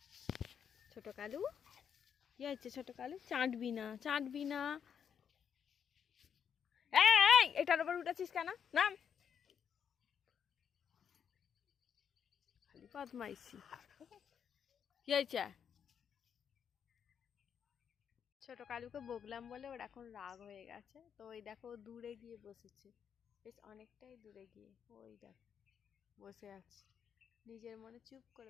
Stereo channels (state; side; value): quieter; right; 7.9 dB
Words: ছোট কালু, কি হয়েছে ছোট কালু? চাটবি না, চাটবি না। এই এটার উপর উঠেছিস কেন? নাম। খালি বদমাইশি। কি হয়েছে? ছোট কালুকে বকলাম বলে ওর এখন রাগ হয়ে গেছে, তো ওই দেখো দূরে গিয়ে বসেছে, বেশ অনেকটাই দূরে গিয়ে ওই দেখো বসে আছে, নিজের মনে চুপ